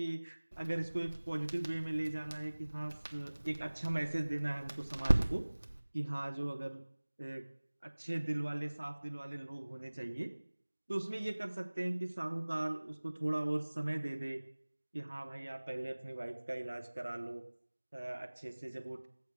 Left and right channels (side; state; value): both; inverted; correlation -1.00